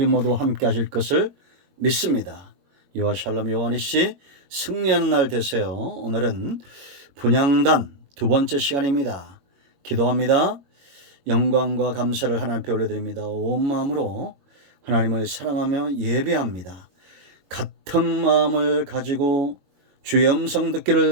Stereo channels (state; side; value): late; left; 22 ms